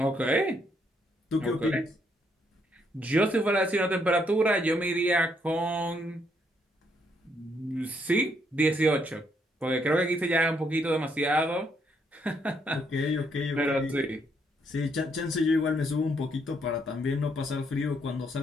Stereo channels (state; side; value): normal; both; correlation 0.73